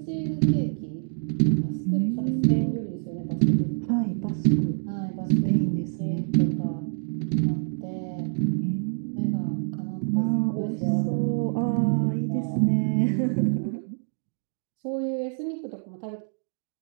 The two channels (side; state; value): left; silent; 61 dB below the other